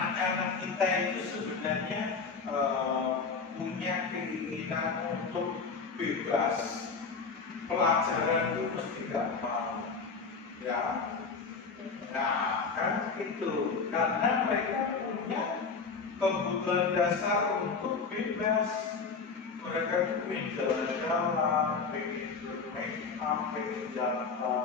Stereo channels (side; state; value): right; quieter; 4.9 dB